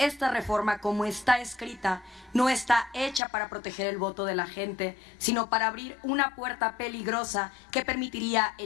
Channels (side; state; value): right; drops out; at 3.2 s